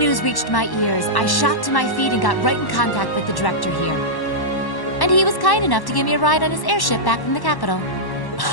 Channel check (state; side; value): late; right; 1.1 ms